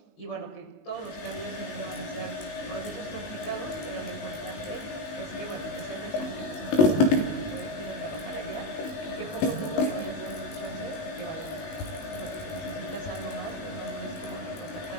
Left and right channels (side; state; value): right; late; 19 ms